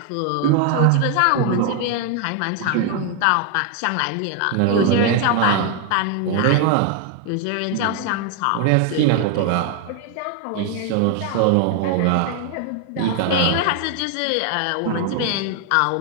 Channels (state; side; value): different; both; correlation 0.01